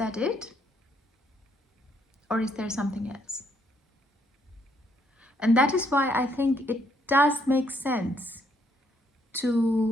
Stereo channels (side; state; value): both; normal; correlation 0.70